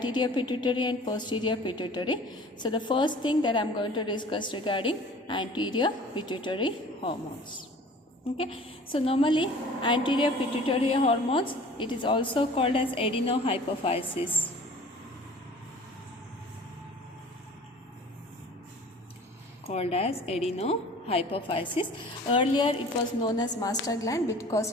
pituitary and posterior pituitary. So the first thing that I am going to discuss regarding anterior pituitary hormones. Okay, so normally anterior pituitary hormones, it is also called as adenohypophysis. Called as adenohypophysis. Earlier it was known as master gland because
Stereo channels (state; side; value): normal; both; correlation 0.46